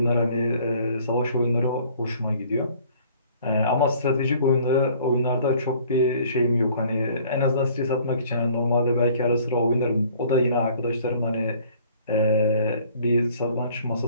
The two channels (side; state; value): both; inverted; correlation -0.56